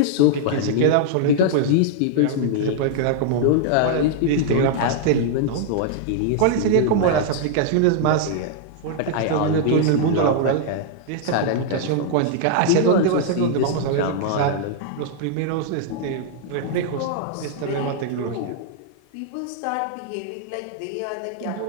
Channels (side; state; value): both; different; correlation -0.01